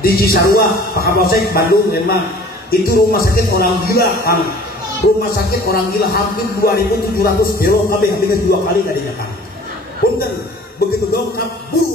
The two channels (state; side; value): normal; both; correlation 0.48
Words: di Cisarua, Pak Kapolsek, Bandung memang itu rumah sakit orang gila, Kang. Rumah sakit orang gila hampir 2.700 euro kabeh habis 2 kali kadinya, Kang. Punten, begitu dongkap